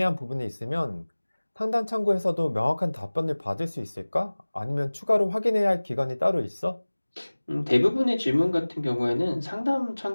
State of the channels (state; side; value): inverted; both; correlation -1.00